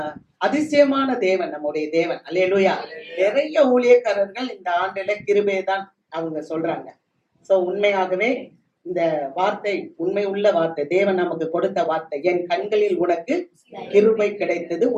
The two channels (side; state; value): both; identical; correlation 1.00